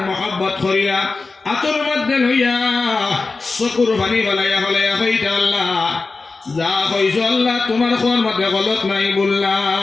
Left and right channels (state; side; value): quieter; right; 3.9 dB